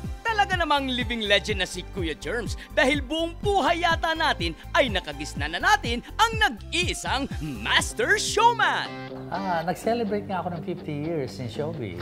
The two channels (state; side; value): identical; both; correlation 1.00